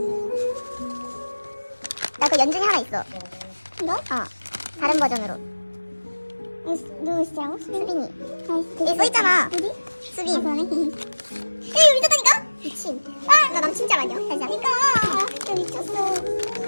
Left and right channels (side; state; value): both; inverted; correlation -1.00